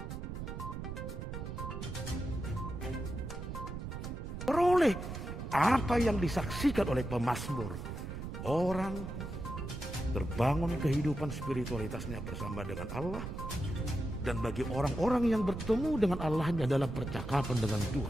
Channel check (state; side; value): noise; right; rumble, 7 dB below the sound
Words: apa yang disaksikan oleh pemazmur, orang terbangun kehidupan spiritualitasnya bersama dengan Allah. Dan bagi orang-orang yang bertemu dengan Allahnya dalam percakapan dengan